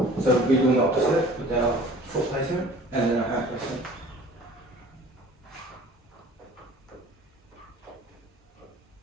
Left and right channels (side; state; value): both; normal; correlation 0.47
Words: So we're doing the opposite with our foot placement and then our hand placement.